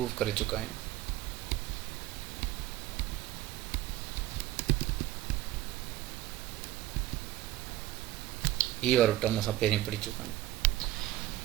करे चुका आहियूं। ही वारो टर्म असां पहिरीं पढ़ी चुका आहियूं।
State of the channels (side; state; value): left; quieter; 15.4 dB